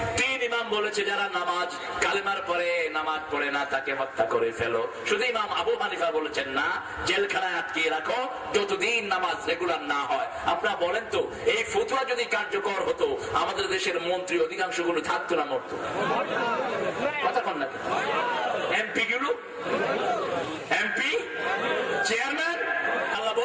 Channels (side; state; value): both; identical; correlation 1.00